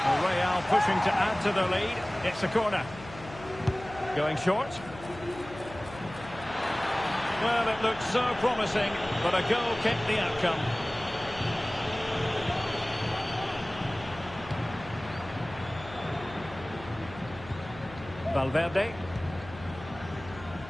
Real pushing to add to the lead. It's a corner. Going short. Well, it looked so promising, but a goal kept the outcome. Valverde.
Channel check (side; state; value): left; noise; hum, 16 dB below the sound